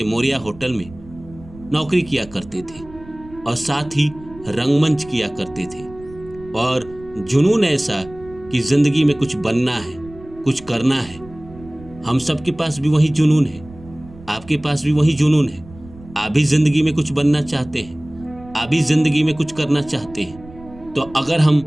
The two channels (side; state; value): right; noise; rumble, 20 dB below the sound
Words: मोरिया होटल में नौकरी किया करते थे और साथ ही रंगमंच किया करते थे। और जुनून ऐसा कि जिंदगी में कुछ बनना है, कुछ करना है। हम सबके पास भी वही जुनून है, आपके पास भी वही जुनून है। आप भी जिंदगी में कुछ बनना चाहते हैं, आप भी जिंदगी में कुछ करना चाहते हैं। तो अगर हम